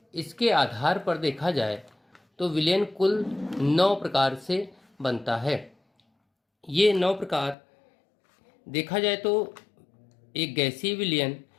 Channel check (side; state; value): right; drops out; at 7.6 s